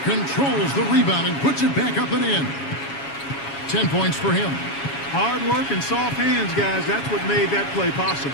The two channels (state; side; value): late; right; 7.2 ms